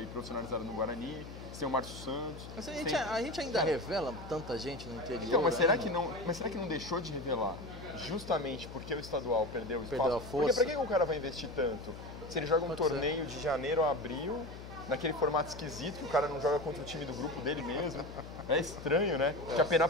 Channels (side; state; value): left; noise; hum, 12 dB below the sound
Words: profissionalizado no Guarani. Tem o Márcio Santos. Mas a gente ainda revela tanta gente no interior. Então, mas será né? que não deixou de revelar? Justamente porque o estadual perdeu o espaço. Perdeu a força. Porque pra que o cara vai investir tanto? Se ele joga um torneio de janeiro a abril, naquele formato esquisito, que o cara não joga contra o time do grupo dele mesmo. É estranho, né? Que a